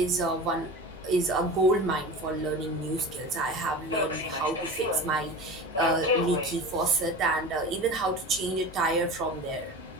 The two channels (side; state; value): both; normal; correlation 0.33